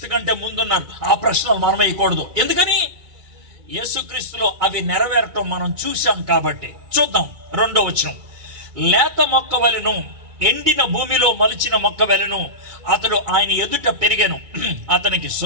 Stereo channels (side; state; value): left; late; 2.3 ms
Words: కంటే ముందున్నారు. ఆ ప్రశ్నలు మనం వేయకూడదు. ఎందుకని? యేసుక్రీస్తులో అవి నెరవేరటం మనం చూసాం కాబట్టి. చూద్దాం 2వ వచనం. లేత మొక్క వలెను, ఎండిన భూమిలో మలిచిన మొక్క వలెను అతడు ఆయన ఎదుట పెరిగెను. అతనికి